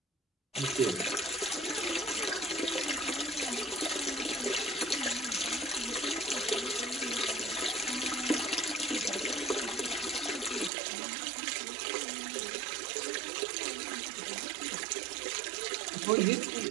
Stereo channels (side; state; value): left; drops out; at 10.7 s